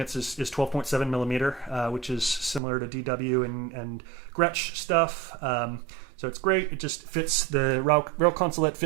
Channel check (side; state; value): left; drops out; at 2.6 s